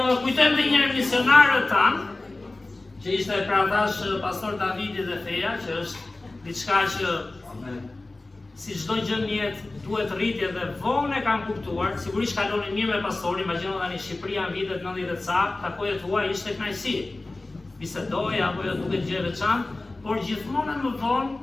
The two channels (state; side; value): quieter; right; 3.0 dB